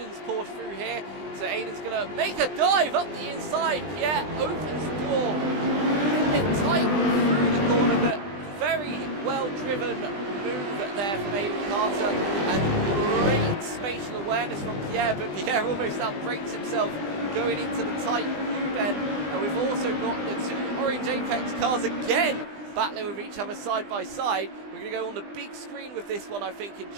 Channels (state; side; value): late; left; 20 ms